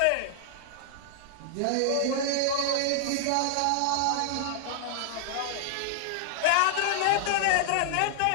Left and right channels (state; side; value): different; both; correlation -0.01